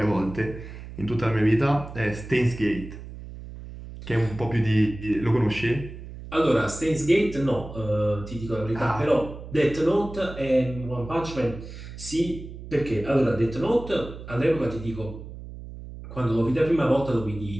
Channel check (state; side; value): noise; right; hum, 13 dB below the sound